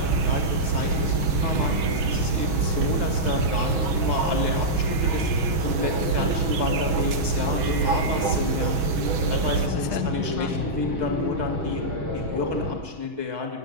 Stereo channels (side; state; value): left; late; 6.3 ms